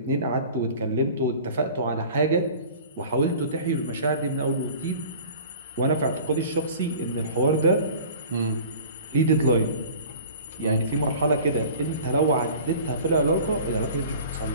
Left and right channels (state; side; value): inverted; both; correlation -0.43